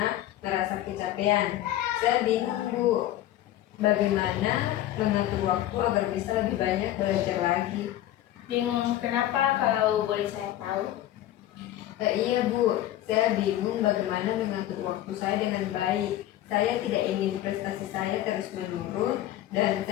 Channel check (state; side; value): quieter; right; 13.5 dB